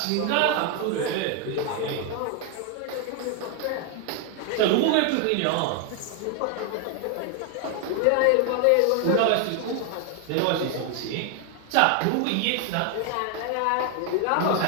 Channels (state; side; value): different; both; correlation 0.01